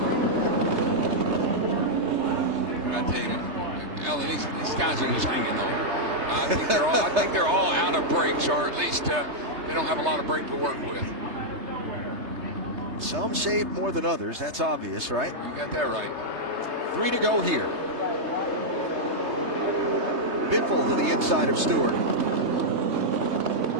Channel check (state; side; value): late; left; 3.3 ms